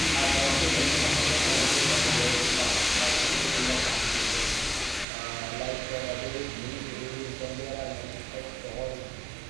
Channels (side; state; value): left; drops out; at 5.1 s